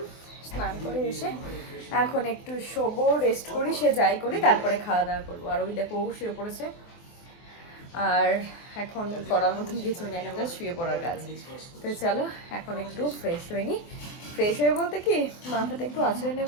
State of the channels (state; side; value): late; right; 24 ms